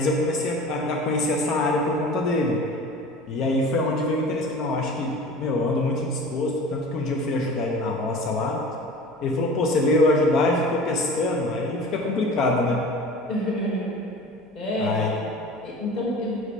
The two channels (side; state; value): both; normal; correlation 0.39